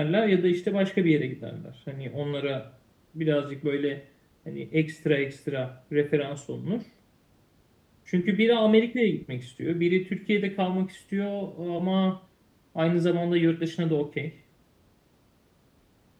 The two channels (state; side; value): identical; both; correlation 1.00